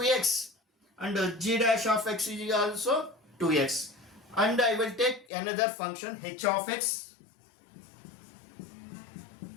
and g dash of x is also 2x. And I will take another function h of x.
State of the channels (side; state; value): right; drops out; at 5.2 s